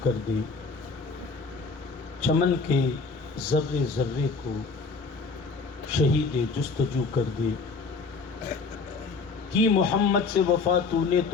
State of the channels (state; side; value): quieter; right; 4.3 dB